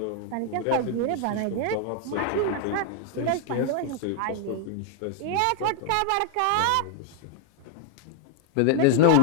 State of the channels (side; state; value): both; different; correlation 0.00